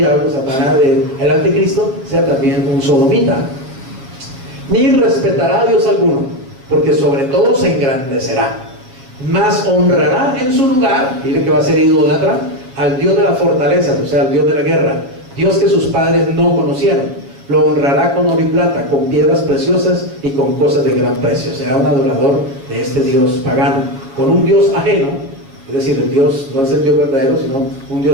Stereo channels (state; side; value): late; left; 7.4 ms